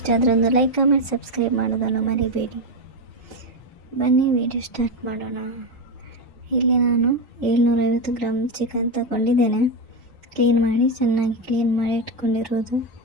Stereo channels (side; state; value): both; normal; correlation 0.10